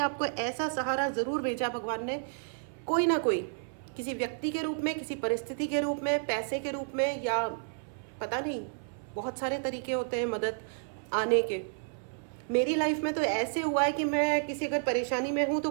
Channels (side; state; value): left; silent; 57 dB below the other